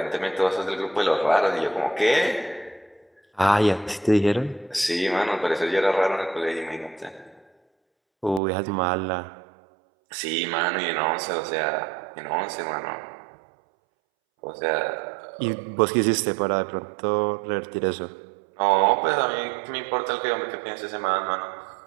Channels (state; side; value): drops out; left; at 8.4 s